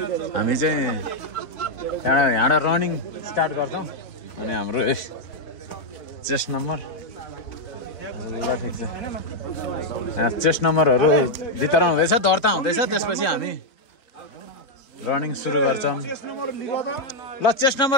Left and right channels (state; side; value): late; right; 4.0 ms